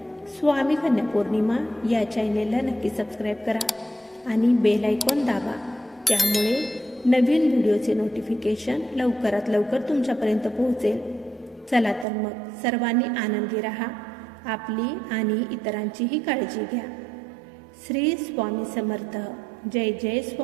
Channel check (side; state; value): left; drops out; at 12.1 s